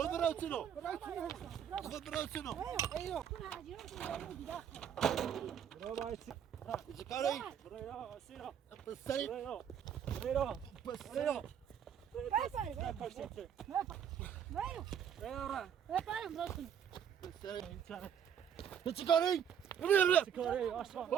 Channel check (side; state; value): left; quieter; 8.7 dB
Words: برو سنو خود برو سنو چیکاری پسری پسری تو چی کاری؟ چی کاری؟